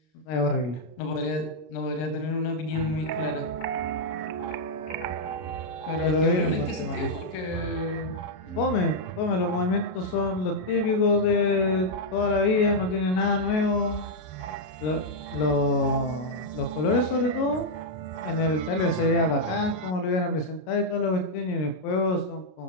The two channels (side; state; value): right; late; 33 ms